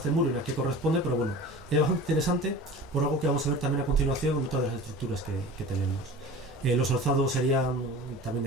muro y a qué corresponde, pero bueno, es bastante interesante por algo que vamos a ver también a continuación en otras de las estructuras que tenemos. Los alzados serían también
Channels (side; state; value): both; normal; correlation 0.37